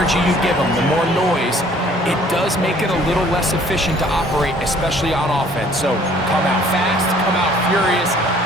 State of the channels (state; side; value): normal; both; correlation 0.57